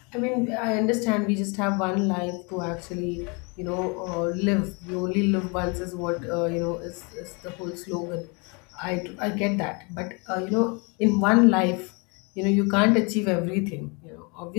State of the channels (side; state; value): right; quieter; 31.5 dB